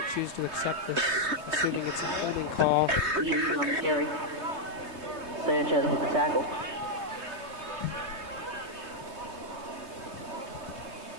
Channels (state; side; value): late; left; 3.2 ms